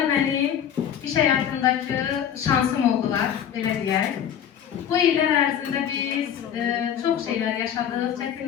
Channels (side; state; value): right; quieter; 9.2 dB